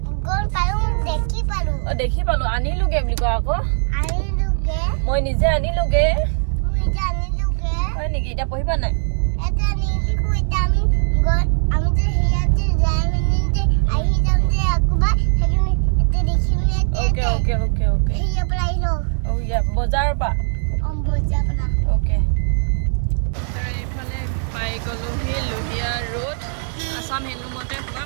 গম পালো দেখি পালো আনিলোগে বুলি কোৱা আকৌ মই নিজে আনিলোগে হয় নেকি এতিয়া পঢ়িবা নাই এটা নিলিখো এটা আমি যে হিয়াতে যাই মানে যে আহি যাম যে আকবা সেইখিনি এটা দেখিম ওকে হিয়া প্লাই লো ও ইয়া বজাৰৰ পা বজাৰ পৰা ওকে আৰু এইফালে পাই গলো হি লোহিয়া ৰোড আসাম হেণ্ডলুমতে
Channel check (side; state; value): left; silent; digital silence